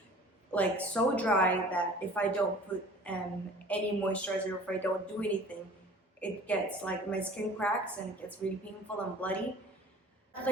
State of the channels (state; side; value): normal; both; correlation 0.46